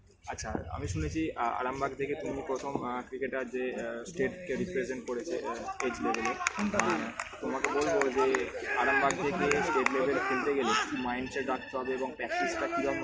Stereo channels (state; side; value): identical; both; correlation 1.00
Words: আচ্ছা, আমি শুনেছি আরামবাগ থেকে তুমি প্রথম ক্রিকেটার যে স্টেটকে রিপ্রেজেন্ট করেছে এজ লেভেলে, তোমাকে বলবো যে আরামবাগ থেকে স্টেট লেভেল খেলতে গেলে কি মাইন্ডসেট রাখতে হবে এবং প্র্যাকটিসটা